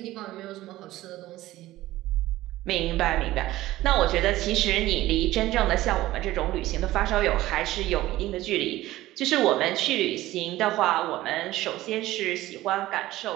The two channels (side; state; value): left; quieter; 16.3 dB